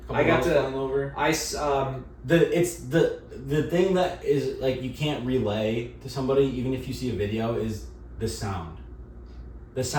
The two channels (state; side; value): identical; both; correlation 1.00